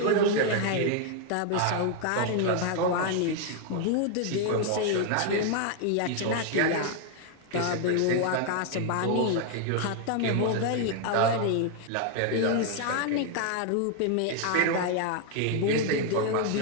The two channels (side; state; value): both; different; correlation 0.00